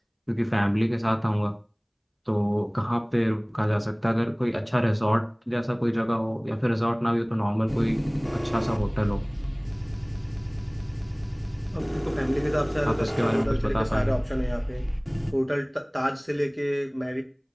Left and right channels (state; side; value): identical; both; correlation 1.00